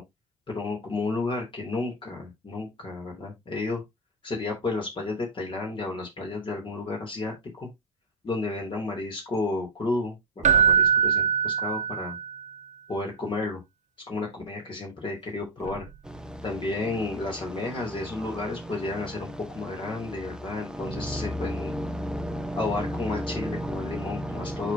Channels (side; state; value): both; normal; correlation 0.09